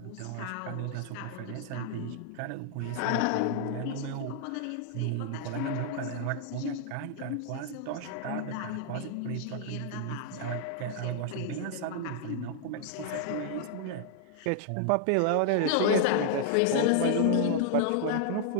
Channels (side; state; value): both; different; correlation -0.01